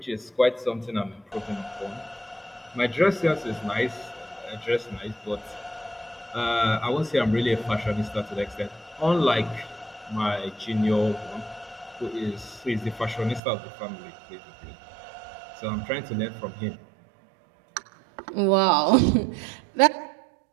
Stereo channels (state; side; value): drops out; left; at 13.4 s